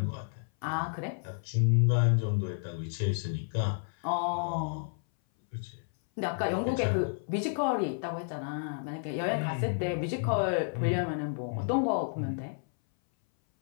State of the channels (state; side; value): silent; right; 57 dB below the other